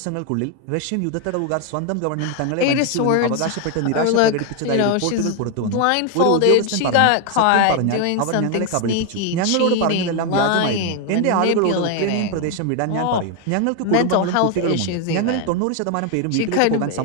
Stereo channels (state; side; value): different; both; correlation 0.00